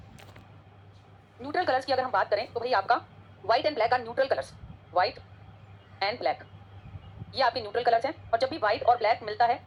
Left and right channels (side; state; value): both; identical; correlation 1.00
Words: न्यूट्रल कलर्स की अगर हम बात करें तो भाई आपका white and black are neutral colours. White and black ये आपके न्यूट्रल कलर्स हैं। और जब भी व्हाइट और ब्लैक मिलता है